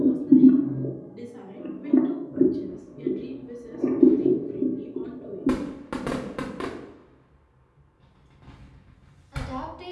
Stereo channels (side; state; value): both; identical; correlation 1.00